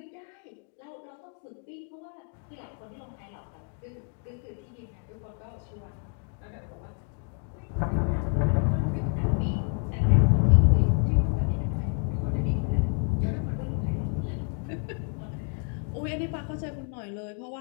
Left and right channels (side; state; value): right; quieter; 39.8 dB